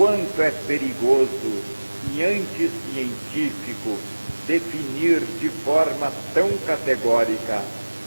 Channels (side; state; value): both; inverted; correlation -1.00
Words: é perigoso e anticientífico definir de forma tão categórica